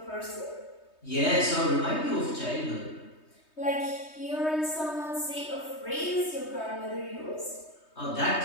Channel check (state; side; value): late; right; 3.2 ms